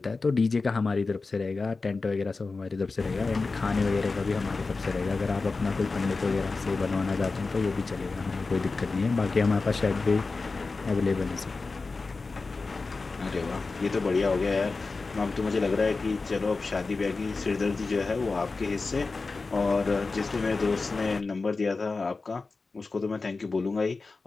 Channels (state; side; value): quieter; right; 4.0 dB